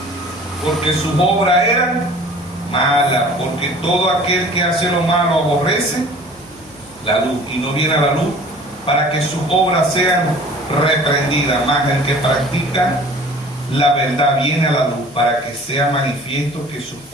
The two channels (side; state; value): left; noise; hum, 29 dB below the sound